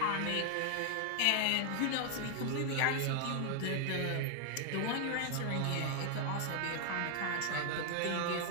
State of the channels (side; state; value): both; different; correlation 0.00